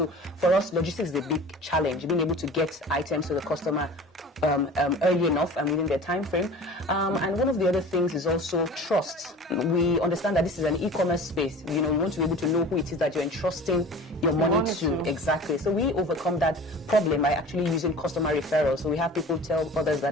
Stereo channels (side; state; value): both; normal; correlation 0.40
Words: for us, logistics is a big challenge, being able to get items to the customer early enough and within their time frame. And one of the other things is also trust. We understand that this is an e-commerce space. You want to be able to know who it is that you're entrusting your money to. Exactly. So we overcome that problem by actually using customer referrals. So we have people tell others